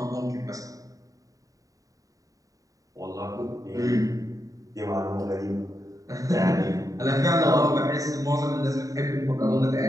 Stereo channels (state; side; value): late; left; 0.16 ms